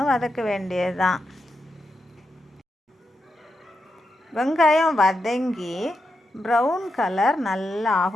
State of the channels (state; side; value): normal; both; correlation 0.86